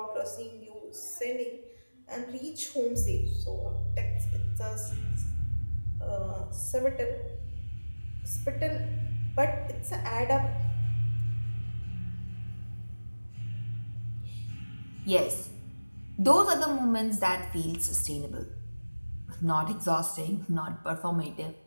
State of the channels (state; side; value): inverted; both; correlation -1.00